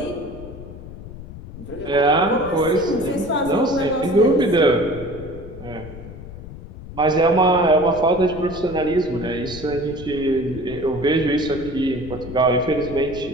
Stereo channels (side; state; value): left; noise; rumble, 13 dB below the sound